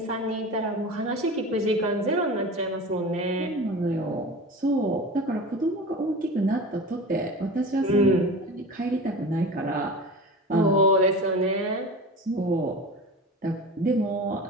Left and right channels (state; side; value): normal; both; correlation 0.33